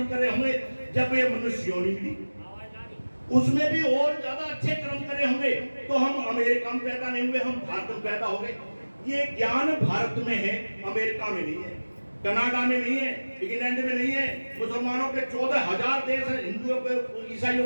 करे होंगे, जब ये मनुष्य योनि मिली उसमें भी और ज्यादा अच्छे कर्म करे होंगे, तो हम अमेरिका में पैदा नहीं हुए, हम भारत में पैदा हो गए। ये ज्ञान भारत में है, अमेरिका में नहीं है, कनाडा में नहीं है, इंग्लैंड में नहीं है, मुसलमानों के 14,000 देश हैं, हिंदुओं के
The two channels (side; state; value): both; inverted; correlation -1.00